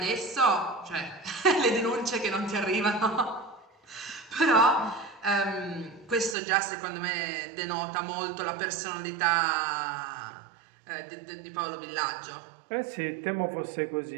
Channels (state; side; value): drops out; left; at 6.4 s